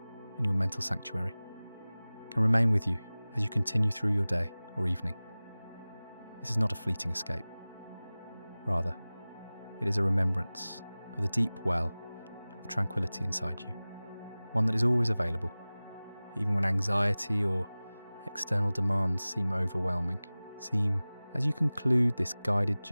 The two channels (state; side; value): inverted; both; correlation -0.99